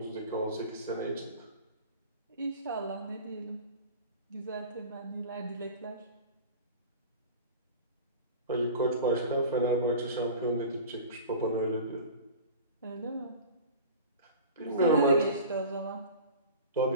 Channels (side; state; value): both; inverted; correlation -0.37